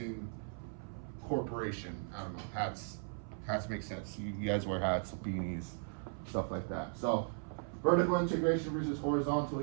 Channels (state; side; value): silent; left; 53 dB below the other